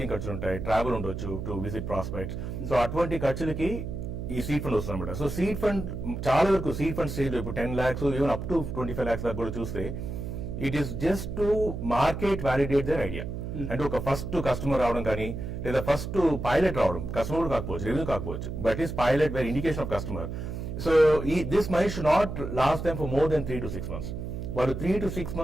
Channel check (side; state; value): right; noise; hum, 6 dB below the sound